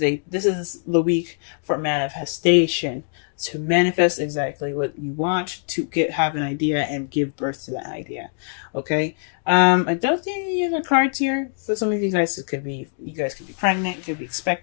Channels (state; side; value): silent; right; digital silence